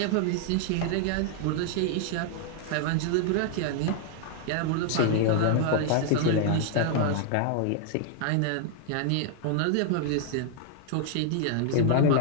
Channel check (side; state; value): both; different; correlation 0.00